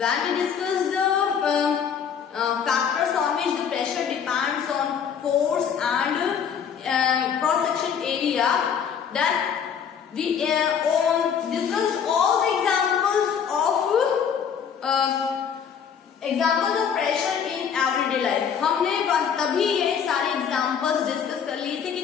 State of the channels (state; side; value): quieter; right; 7.5 dB